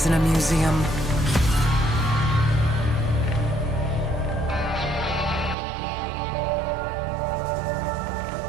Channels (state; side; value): drops out; left; at 5.6 s